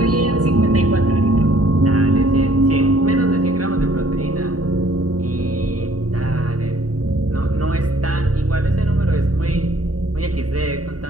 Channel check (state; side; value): late; left; 0.68 ms